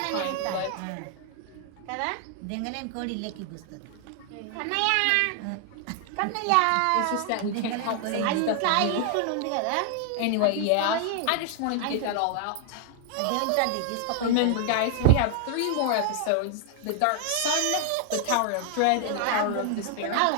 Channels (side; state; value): both; different; correlation 0.00